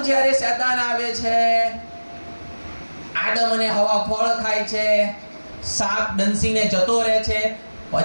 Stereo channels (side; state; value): both; inverted; correlation -1.00